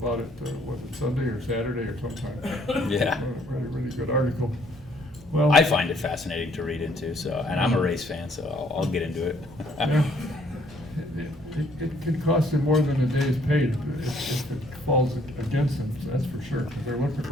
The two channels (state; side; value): normal; both; correlation 0.64